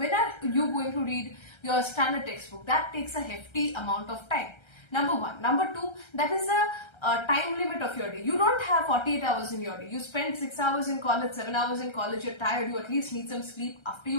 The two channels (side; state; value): right; late; 1.3 ms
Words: are you going to read your standard textbook? That takes a hefty amount of time. Number 1. Number 2, that is a time limit of your day. You don't have 48 hours in your day. You spend 6 hours in college, 7 hours in college, you're tired, you at least need some sleep. After